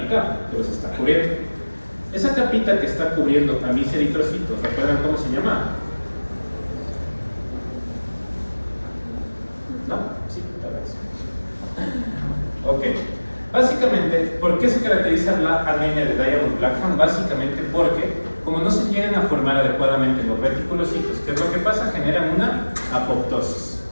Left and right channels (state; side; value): inverted; both; correlation -1.00